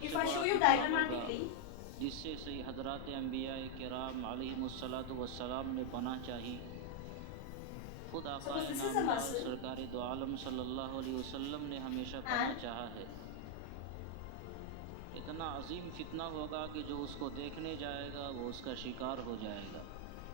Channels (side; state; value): both; different; correlation 0.00